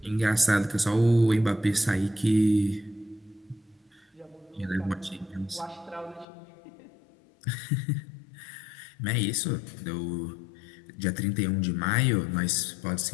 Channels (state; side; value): drops out; right; at 6.2 s